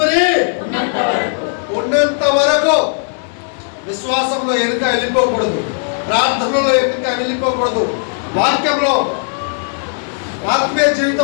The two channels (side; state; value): right; silent; 61 dB below the other